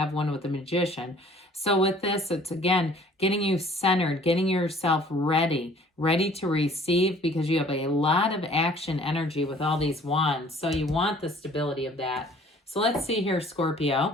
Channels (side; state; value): both; normal; correlation 0.53